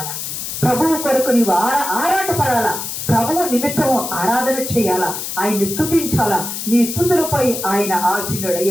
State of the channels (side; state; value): left; noise; hiss, 6 dB below the sound